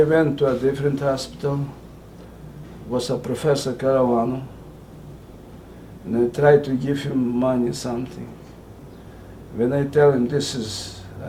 went to a different hospital. Was a Professor Caravano, and I tried to give him money, something. When I tell him this is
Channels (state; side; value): identical; both; correlation 1.00